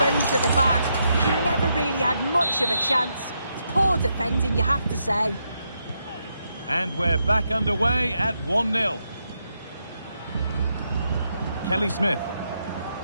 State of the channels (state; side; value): inverted; both; correlation -0.81